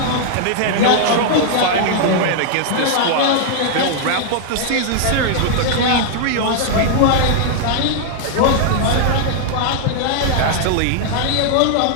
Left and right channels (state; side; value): different; both; correlation 0.00